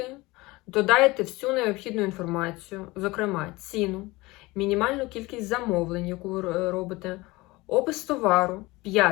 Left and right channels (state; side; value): quieter; right; 21.6 dB